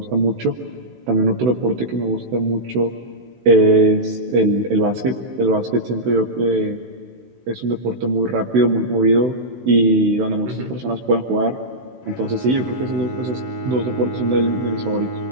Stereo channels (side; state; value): left; late; 16 ms